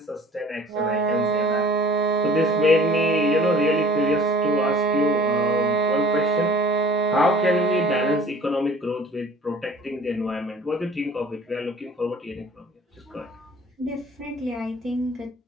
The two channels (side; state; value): both; normal; correlation 0.49